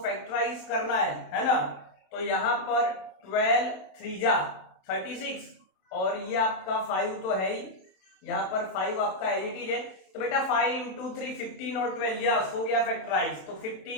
करना है ना। तो यहाँ पर 12 3 जा 36, और ये आपका 5 तो है ही, यहाँ पर 5 आपका एडिटिव है। तो बेटा 5 इंटू 3 15 और 12, यस हो गया फैक्टराइज। तो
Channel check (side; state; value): right; late; 27 ms